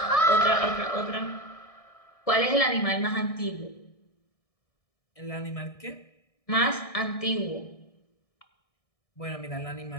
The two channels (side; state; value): right; late; 1.6 ms